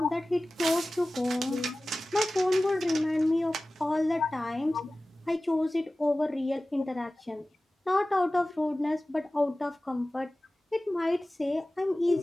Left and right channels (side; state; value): both; normal; correlation 0.97